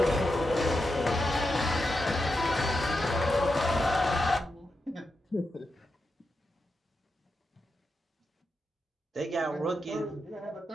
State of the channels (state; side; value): normal; both; correlation 0.87